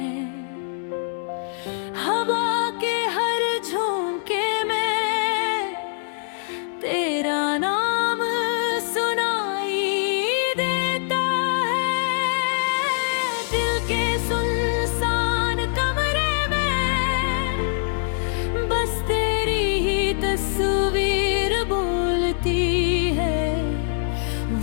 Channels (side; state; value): right; silent; digital silence